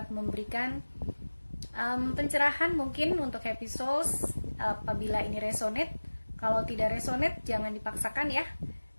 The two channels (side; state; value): both; inverted; correlation -1.00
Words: memberikan pencerahan mungkin untuk Happy Souls apabila ini resonate. Kalau tidak resonate jangan dipaksakan ya.